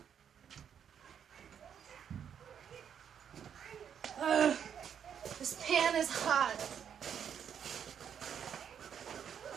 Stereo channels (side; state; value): left; quieter; 8.2 dB